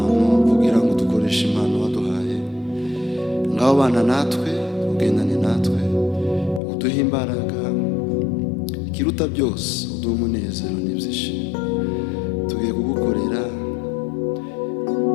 kugira ngo dukoreshe impano waduhaye. Ngaho bana natwe, ugendane natwe, uduhe imbaraga, ikiruta byose uduhe umunezero n'ibyishimo. Tugiye kugukorera,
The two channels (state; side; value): drops out; right; at 6.6 s